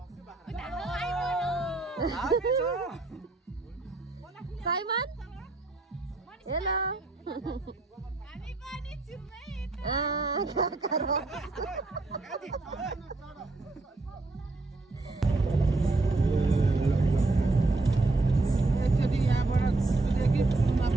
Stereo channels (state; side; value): quieter; left; 3.2 dB